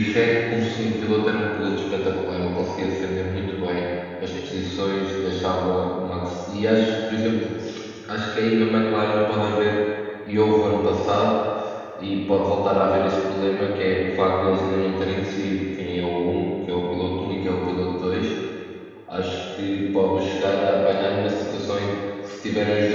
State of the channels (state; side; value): identical; both; correlation 1.00